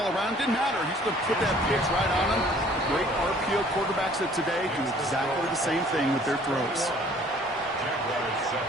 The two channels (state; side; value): normal; both; correlation 0.55